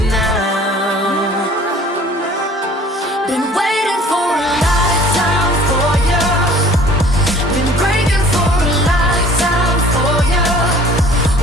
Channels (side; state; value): both; normal; correlation 0.50